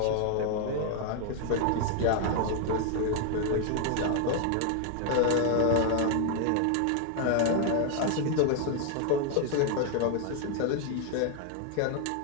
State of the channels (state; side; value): different; both; correlation 0.00